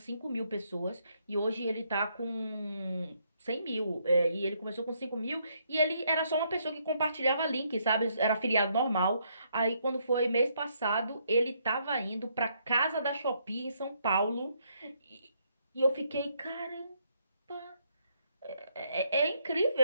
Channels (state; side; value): inverted; both; correlation -0.73